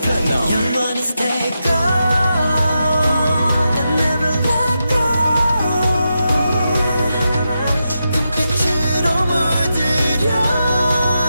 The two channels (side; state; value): both; inverted; correlation -0.87